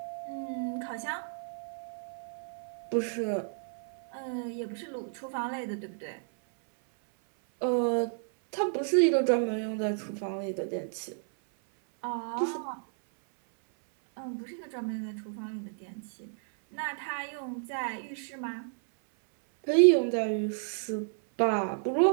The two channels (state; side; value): silent; left; 56 dB below the other